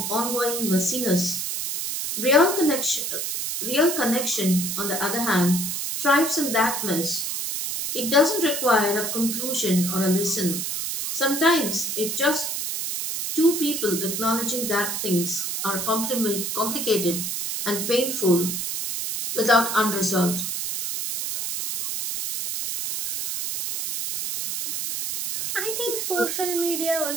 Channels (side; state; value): right; noise; hiss, 3 dB below the sound